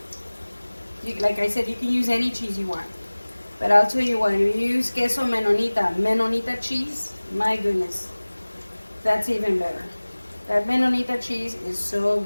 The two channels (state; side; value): inverted; both; correlation -1.00